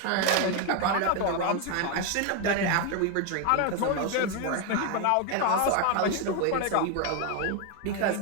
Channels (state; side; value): different; both; correlation 0.01